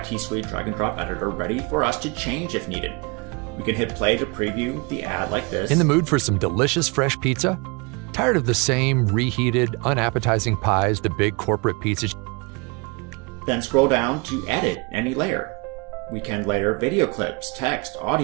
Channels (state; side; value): quieter; left; 29.0 dB